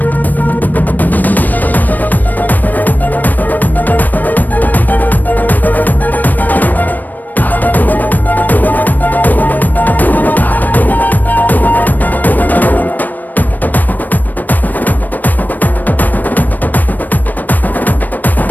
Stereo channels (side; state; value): right; late; 0.086 ms